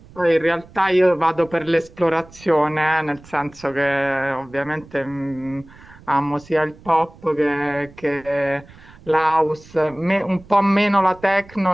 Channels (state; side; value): noise; right; rumble, 22 dB below the sound